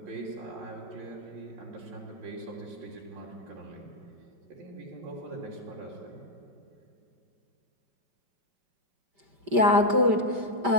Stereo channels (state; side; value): late; left; 5.1 ms